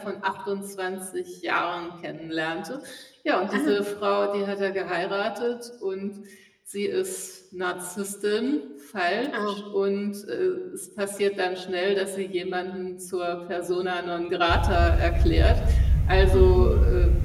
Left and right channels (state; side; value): identical; both; correlation 1.00